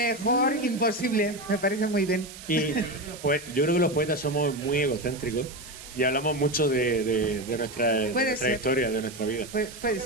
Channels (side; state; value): right; noise; hiss, 15 dB below the sound